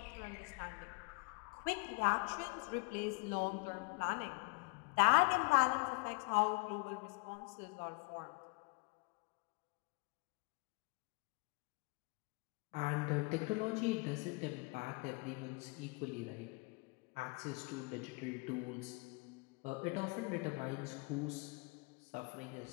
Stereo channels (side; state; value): right; quieter; 29.8 dB